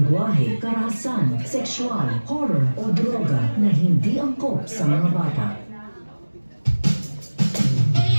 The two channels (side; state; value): both; inverted; correlation -1.00